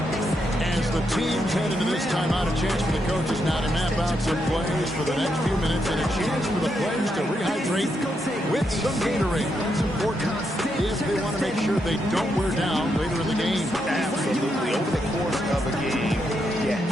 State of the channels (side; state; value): both; normal; correlation 0.81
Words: As the teams head into this timeout, a chance for the coaches now to map out some plays for the next few minutes and a chance for the players to rehydrate with some Gatorade. That's important if they want to make sure they don't wear down later in the game. Absolutely. Over the course of a game, you